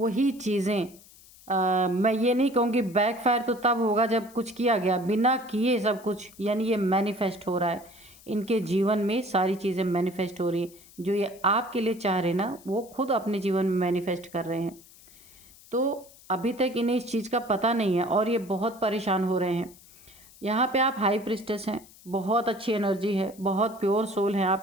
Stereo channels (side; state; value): left; noise; hiss, 23 dB below the sound